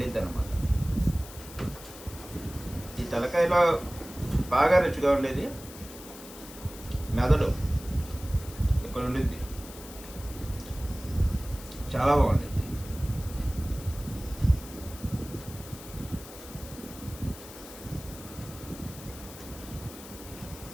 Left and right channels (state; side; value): noise; left; hiss, 15 dB below the sound